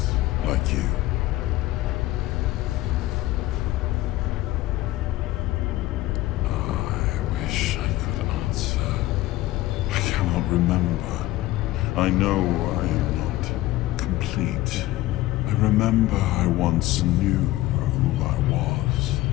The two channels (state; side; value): quieter; right; 16.7 dB